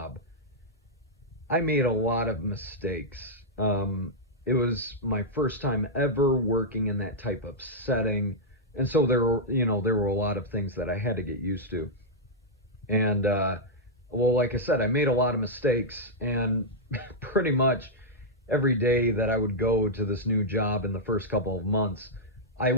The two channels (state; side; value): normal; both; correlation -0.07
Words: I made a lot of mistakes. It was my first time ever working in that type of setting. And so there were a lot of things that I had to get used to. And, well, like I said, I made a lot of mistakes, and pretty much every day that I would go to this new job in the first couple of months, I